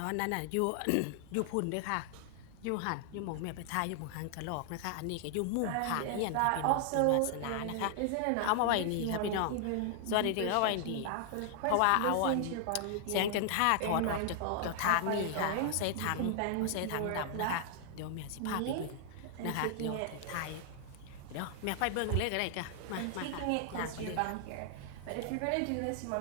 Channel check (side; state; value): both; different; correlation 0.00